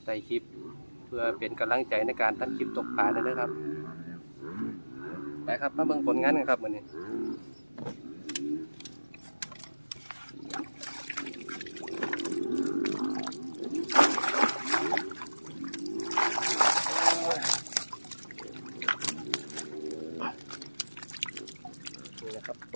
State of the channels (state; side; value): inverted; both; correlation -1.00